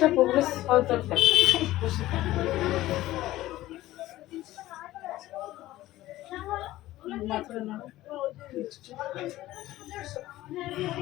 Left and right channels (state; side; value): quieter; right; 15.9 dB